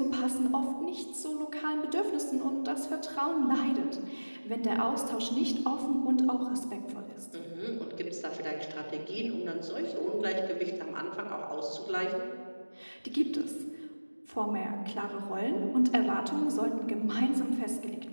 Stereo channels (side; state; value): both; inverted; correlation -1.00